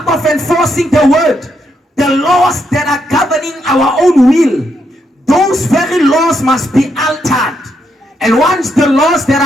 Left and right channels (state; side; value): normal; both; correlation 0.78